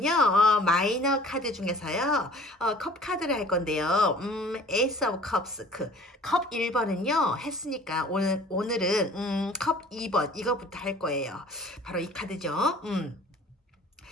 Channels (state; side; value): normal; both; correlation 0.49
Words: 마이너 카드 중에서요, 컵 카드를 할 건데요. 에이스 오브 컵스, 컵 1번은요, 했으니까, 오늘은, 컵 2번, 이거부터 할 거예요. 바로 이 카드죠.